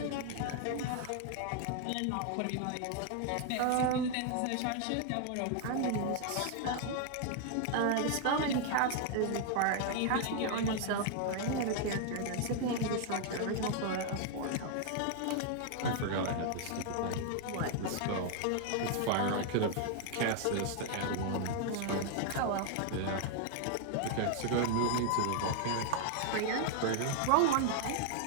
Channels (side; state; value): both; different; correlation 0.00